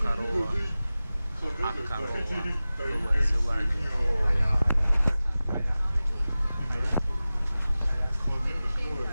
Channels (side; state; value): both; inverted; correlation -0.97